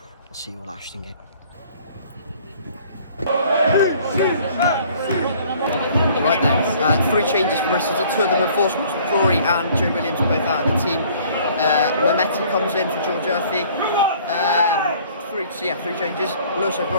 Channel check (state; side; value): inverted; both; correlation -0.55